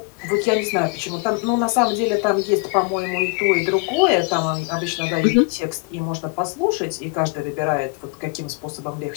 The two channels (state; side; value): quieter; right; 32.3 dB